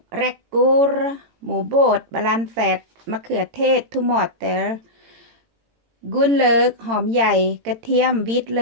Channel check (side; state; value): left; late; 18 ms